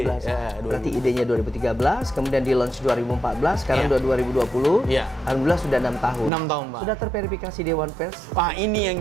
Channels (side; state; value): left; drops out; at 6.3 s